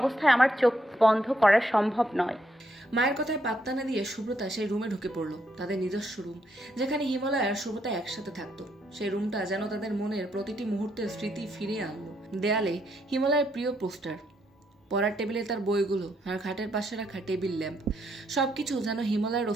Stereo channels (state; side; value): normal; both; correlation 0.75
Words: আমার চোখ বন্ধ করা সম্ভব নয়। মায়ের কথায় পাত্তা না দিয়ে সুব্রতা সেই রুমে ঢুকে পড়লো, তাদের নিজস্ব রুম, যেখানে হিমালয় আর সুব্রতা একসাথে থাকতো। সেই রুমটা যেন তাদের মনের প্রতিটি মুহূর্তের স্মৃতি ফিরিয়ে আনলো। দেয়ালে হিমালয়ের প্রিয় পোস্টার, পড়ার টেবিলে তার বইগুলো, আর খাটের পাশে রাখা টেবিল ল্যাম্প, সবকিছু যেন হিমালয়ের